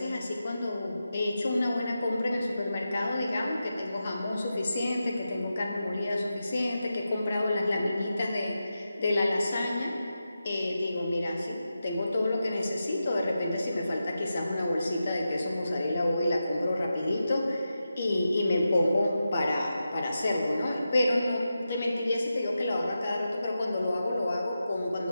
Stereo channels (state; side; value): inverted; both; correlation -0.90